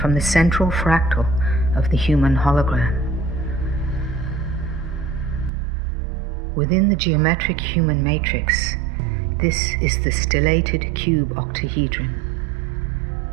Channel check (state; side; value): drops out; left; at 5.5 s